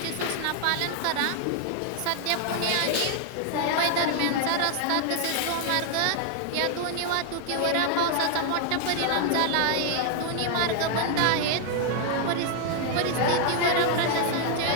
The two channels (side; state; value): both; different; correlation 0.00